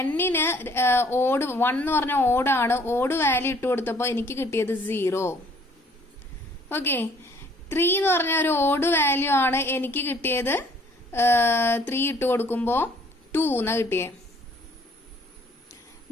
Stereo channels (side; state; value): both; normal; correlation 0.59